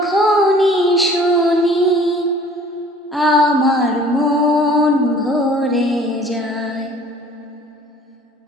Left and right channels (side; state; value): both; normal; correlation 0.51